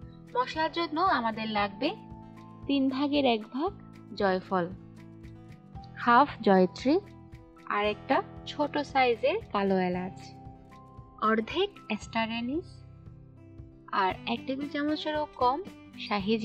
মশলার জন্য আমাদের লাগবে 3 ভাগের 1 ভাগ জয়ফল, হাফ জয়ত্রী, আর একটা ছোট সাইজের কালো এলাচ, অর্ধেক স্টার অ্যানিস, আর 1 টেবিল চামচেরও কম শাহি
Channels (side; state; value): both; identical; correlation 1.00